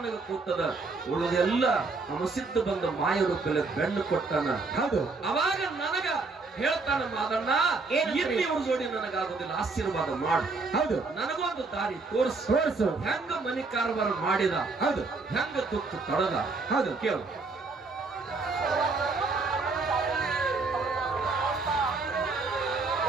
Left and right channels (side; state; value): left; quieter; 3.9 dB